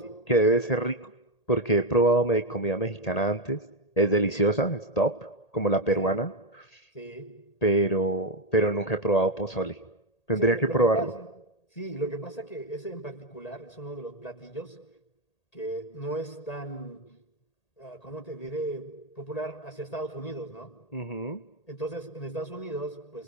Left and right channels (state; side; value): late; right; 1.8 ms